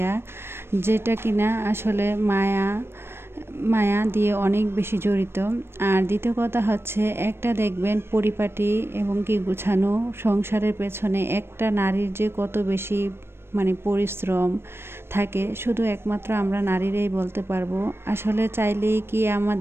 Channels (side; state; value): left; late; 0.12 ms